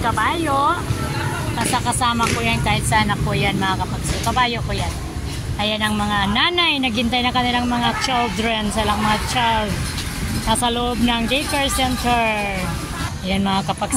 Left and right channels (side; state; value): both; identical; correlation 1.00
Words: kabayo. Kasama ko yan kahit saan ako yan, mga kapagsew. Kabayo ko yan. Ayan ang mga nanay, naghintay na kanilang mga children, silang mga child. Nasa loob ng daycare center. Ayan mga